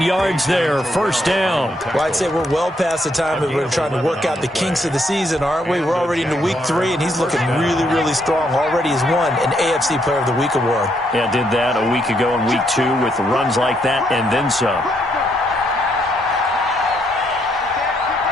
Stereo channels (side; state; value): both; normal; correlation 0.74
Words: yards there, first down. Well, I'd say we're well past the time that we're trying to work out the kinks of the season, aren't we? We're already into week 3, and he's looking really, really strong. Already has won an AFC Player of the Week award. Yeah, did that a week ago in week 2 with runs like that and then some.